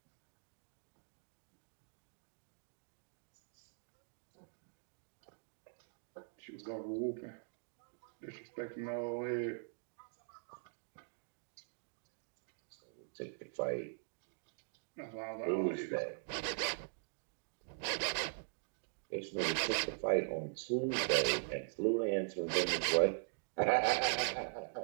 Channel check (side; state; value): left; silent; digital silence